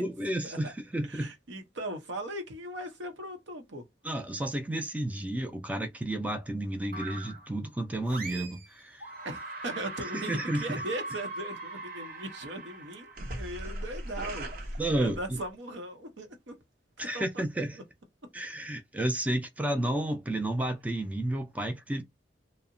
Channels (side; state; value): both; normal; correlation 0.66